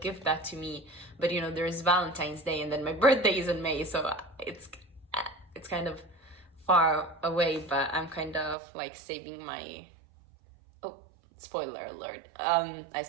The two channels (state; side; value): drops out; left; at 8.6 s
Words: give that to me. But, you know, there's Valentine's Day and then my birthday is in May. So it's kind of far away, but I'm kind of like saving my... Oh, spoiler alert. I